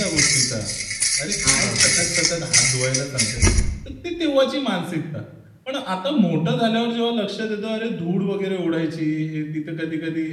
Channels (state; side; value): identical; both; correlation 1.00